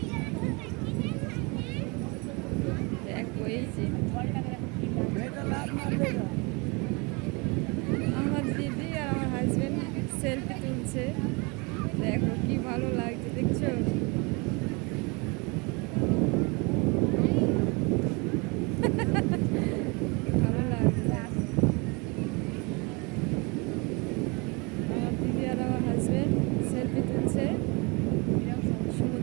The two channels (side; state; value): left; quieter; 29.1 dB